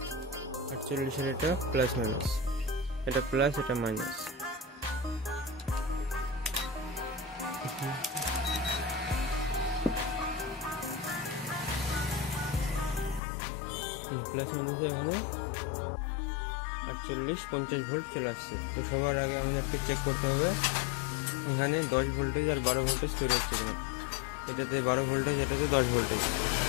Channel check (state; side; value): drops out; right; at 13.2 s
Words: 48-এর এটা প্লাস মাইনাস, এটা প্লাস এটা মাইনাস। প্লাস মাইনাসে এখানে 48-50 ভোল্ট চলে আসছে। তো সবার আগে আমাদেরকে চেক করতে হবে এখানে 10 ভোল্টেজ আর 12 ভোল্টেজ তৈরি হচ্ছে কিনা। এটাতে 12 ভোল্টেজ, এটাতে 10 ভোল্টেজ।